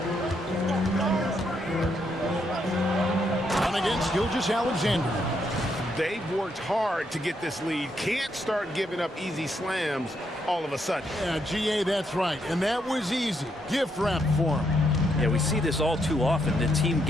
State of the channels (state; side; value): normal; both; correlation 0.77